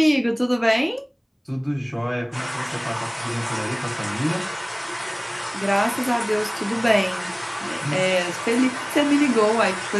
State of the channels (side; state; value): both; identical; correlation 1.00